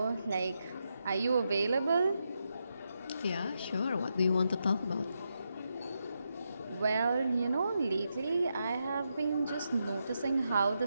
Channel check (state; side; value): inverted; both; correlation -0.84